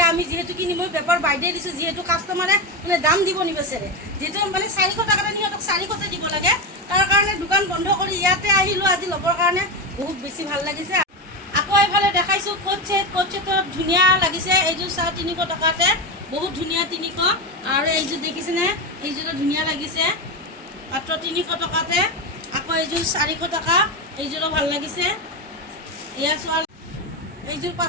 আমি যেহেতু কিনি মই বেপাৰ বাইদে দিছোঁ যিহেতু কাষ্টমাৰে মানে দাম দিব নিবিচাৰে যেহেতু মানে 400 টাকাত সিহঁতক 400তে দিব লাগে তাৰ কাৰণে দোকান বন্ধ কৰি ইয়াতে আহিলোঁ আজি ল'বৰ কাৰণে বহুত বেছি ভাল লাগিছে আকৌ এইফালে দেখাইছো কোট ছেটত ধুনীয়া লাগিছে এইযোৰ 350 টাকাতে বহুত ধুনীয়া 300 আৰু এইযোৰ দেখিছেনে এইযোৰ ধুনীয়া লাগিছে মাত্ৰ 300 টাকাতে আকৌ এইযোৰ 400 টাকা এইযোৰো ভাল লাগিছে এয়া চোৱা এইযোৰ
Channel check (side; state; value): both; normal; correlation 0.15